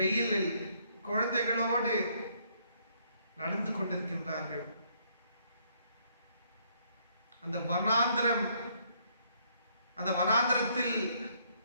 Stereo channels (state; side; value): inverted; both; correlation -0.69